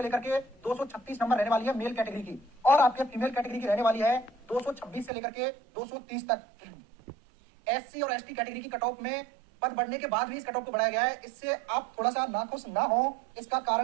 लेकर के 236 नंबर रहने वाली है मेल कैटेगरी की। और आपके फीमेल कैटेगरी की रहने वाली है 226 से लेकर के 230 तक। एससी और एसटी कैटेगरी की कट ऑफ में पद बढ़ने के बाद भी इस कट ऑफ को बढ़ाया गया है। इससे आप थोड़ा सा नाखुश ना हो, इसका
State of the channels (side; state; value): left; drops out; at 5.1 s